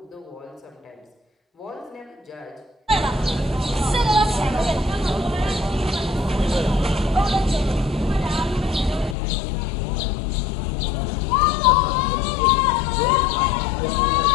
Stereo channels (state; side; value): drops out; right; at 9.2 s